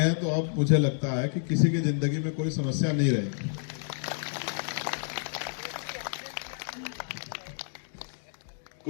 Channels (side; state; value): right; silent; digital silence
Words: तो अब मुझे लगता है कि किसी की जिंदगी में कोई समस्या नहीं रहेगी।